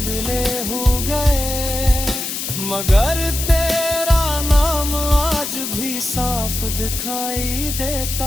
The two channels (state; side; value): noise; left; hiss, 5 dB below the sound